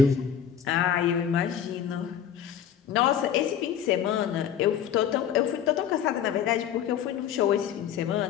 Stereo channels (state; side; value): quieter; right; 8.9 dB